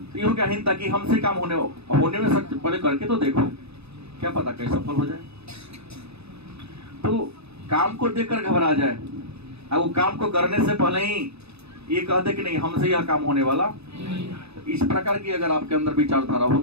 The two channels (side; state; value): left; late; 0.79 ms